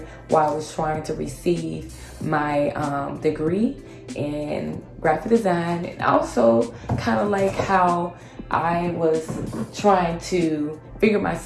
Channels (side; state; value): both; identical; correlation 1.00